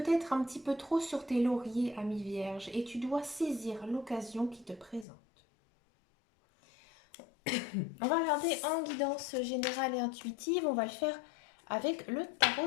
un petit peu trop sur tes lauriers, ami vierge, et tu dois saisir l'occasion qui te présente. On va regarder en guidance générale et intuitive. On va le faire avec le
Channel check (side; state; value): right; drops out; at 5.1 s